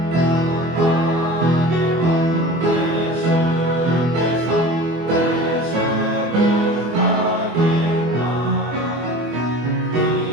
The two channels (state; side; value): late; left; 24 ms